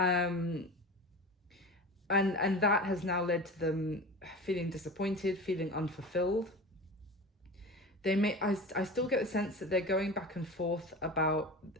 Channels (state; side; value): normal; both; correlation 0.32